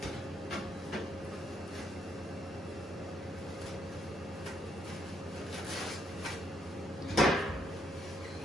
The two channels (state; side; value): normal; both; correlation 0.73